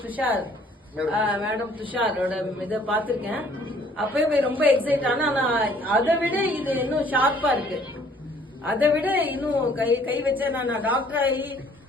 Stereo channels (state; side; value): normal; both; correlation 0.59